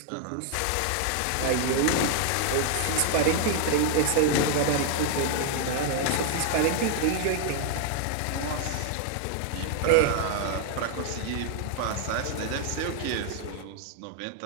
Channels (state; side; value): different; both; correlation 0.00